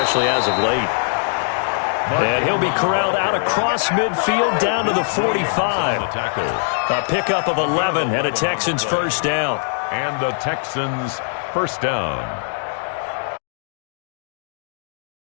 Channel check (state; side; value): silent; right; digital silence